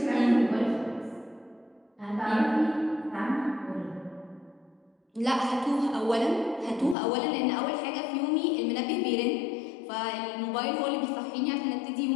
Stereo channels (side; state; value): right; drops out; at 7.0 s